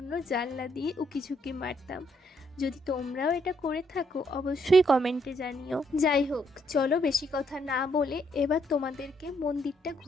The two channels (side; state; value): both; normal; correlation 0.72